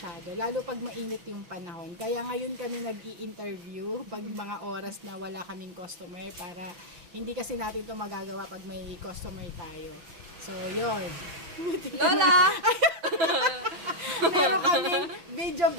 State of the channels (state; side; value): late; left; 6.0 ms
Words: Lalo pag mainit yung panahon. Kaya ngayon kami nag-i-interview pag mga oras na wala kaming customer para hindi kasi natin to magagawa pag may customer tayo. So, yun. Lola! Meron kaming video